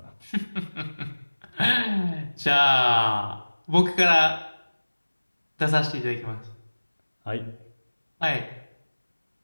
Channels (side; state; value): both; inverted; correlation -1.00